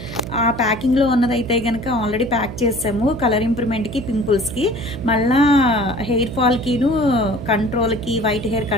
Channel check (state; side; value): noise; right; hum, 10 dB below the sound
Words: ఆ ప్యాకింగ్‌లో ఉన్నదైతే గనక ఆల్రెడీ ప్యాక్ చేసాము. కలర్ ఇంప్రూవ్‌మెంట్‌కి, పింపుల్స్‌కి, మళ్ళా హెయిర్ ఫాల్‌కిను కంట్రోల్‌కి, వైట్ హెయిర్